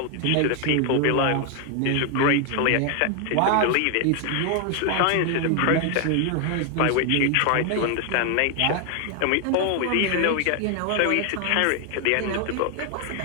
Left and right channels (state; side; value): different; both; correlation 0.00